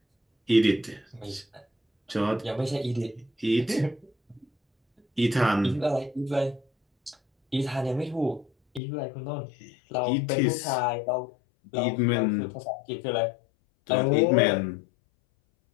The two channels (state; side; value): drops out; right; at 8.8 s